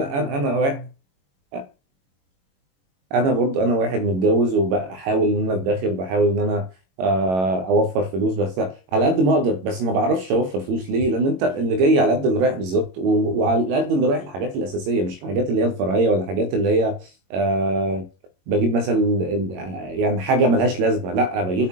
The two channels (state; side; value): late; left; 22 ms